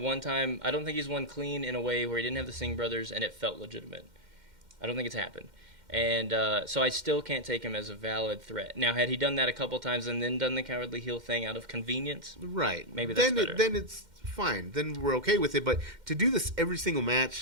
one time. I don't think he's won clean in a way where he didn't have the Singh brothers and it felt legitimate. I don't think it's happened. And so I still can't take him as a valid threat. Now, had he done that a couple times and then done the cowardly heel thing out of convenience, right? Maybe that's better. Then it's fine. Then we're okay with it. But to do this every single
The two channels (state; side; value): late; left; 2.1 ms